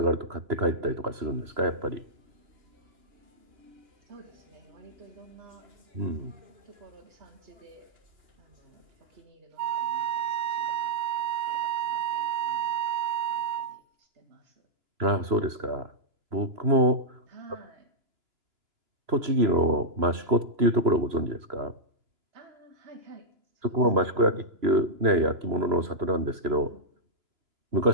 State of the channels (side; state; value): left; late; 3.0 ms